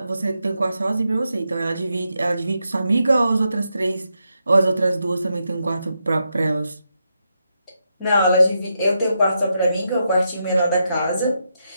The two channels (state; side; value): inverted; both; correlation -0.84